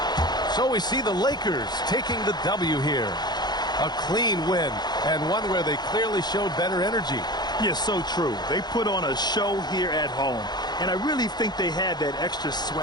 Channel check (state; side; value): late; right; 0.20 ms